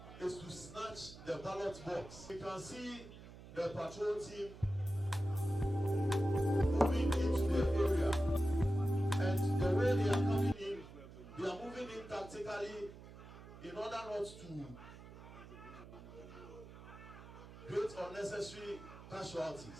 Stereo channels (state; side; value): noise; right; hum, 16 dB below the sound